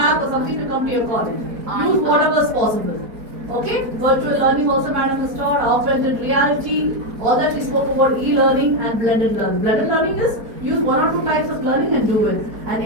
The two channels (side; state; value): left; late; 4.0 ms